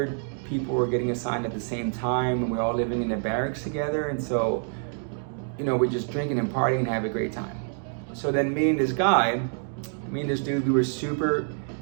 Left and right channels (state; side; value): silent; left; 60 dB below the other